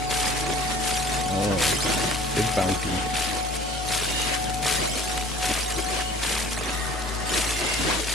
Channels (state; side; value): noise; left; hum, 22 dB below the sound